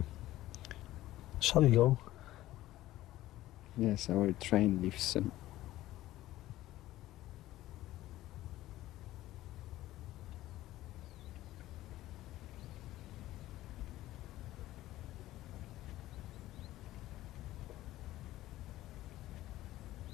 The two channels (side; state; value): right; quieter; 15.4 dB